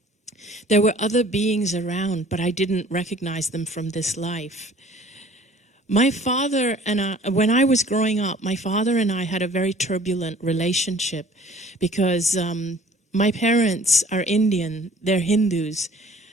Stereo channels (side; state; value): both; normal; correlation 0.51